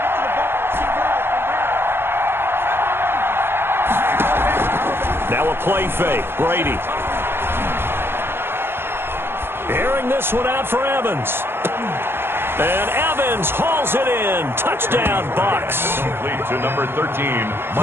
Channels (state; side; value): late; left; 0.11 ms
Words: Now a play fake. Brady. Airing this one out for Evans. And Evans hauls it in. Touchdown, Bucs. Complete to number 13.